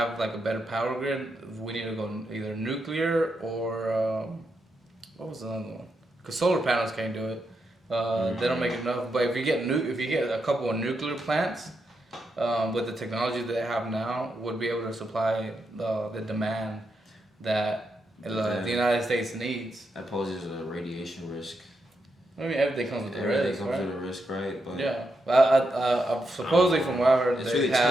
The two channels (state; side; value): normal; both; correlation 0.83